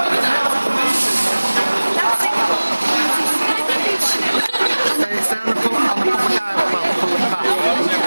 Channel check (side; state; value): both; inverted; correlation -1.00